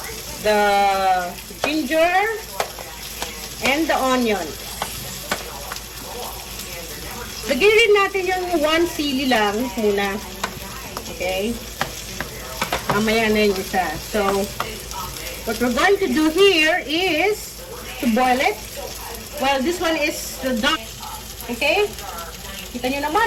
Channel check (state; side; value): identical; both; correlation 1.00